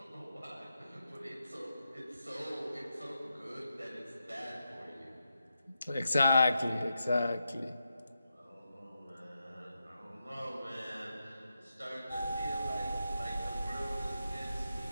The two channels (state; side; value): inverted; both; correlation -0.87